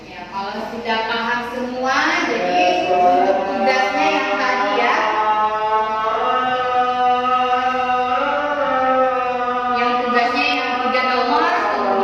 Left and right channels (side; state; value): both; identical; correlation 1.00